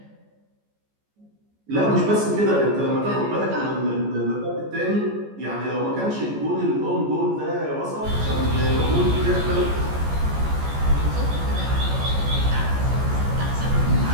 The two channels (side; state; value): left; late; 14 ms